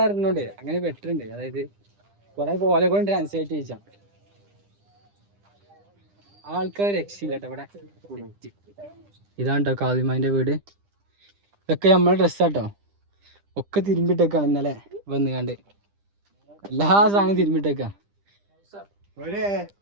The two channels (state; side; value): late; left; 10 ms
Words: അറിഞ്ഞോണ്ട് അങ്ങനെ ബെറ്ററുണ്ട് അതായത് കുറെ പോലെ കൊണ്ട് ട്രാൻസ്ലേറ്റ് ചെയ്യിച്ചാ ആൾക്കാർ രക്ഷയില്ല കേട്ടോ ഇവിടെ ഇതാണ് കേട്ടോ കാളിമാന്റെ വീട് ഇതൊക്കെ നമ്മളെ ഡ്രസ്സാട്ടോ ഒക്കെ തിരുമ്പിട്ടേക്കാണ് ഇന്നലെ വന്ന് കണ്ട് എല്ലാ സാധനവും തിരുമ്പിട്ടേക്കാ